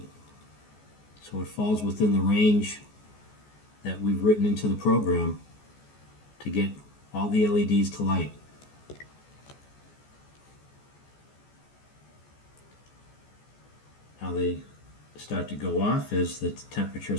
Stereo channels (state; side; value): late; right; 14 ms